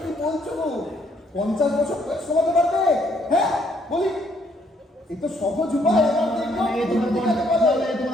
বলছো গো, 50 বছর বয়স কমাতে পারবে? হ্যাঁ বলি, এই তো সহজ উপায়। এবার দেখো,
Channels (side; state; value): both; normal; correlation 0.68